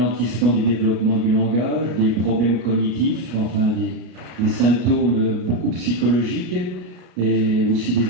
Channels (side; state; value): left; late; 33 ms